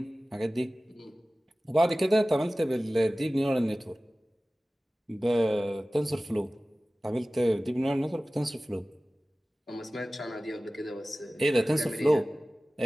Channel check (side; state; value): both; normal; correlation 0.97